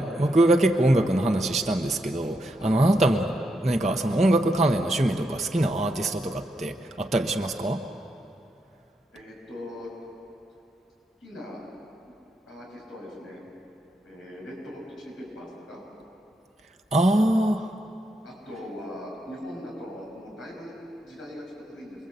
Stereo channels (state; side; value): normal; both; correlation 0.81